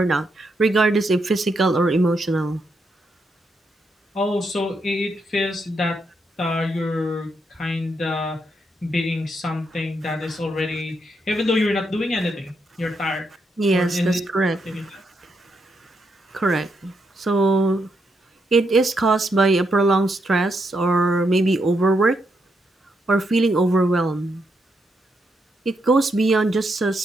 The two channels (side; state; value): both; normal; correlation 0.80